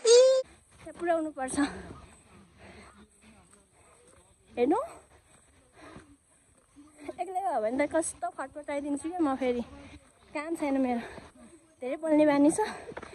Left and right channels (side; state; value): both; identical; correlation 1.00